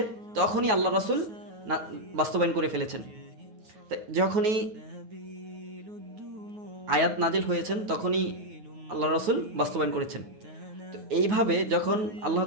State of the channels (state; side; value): late; left; 9.3 ms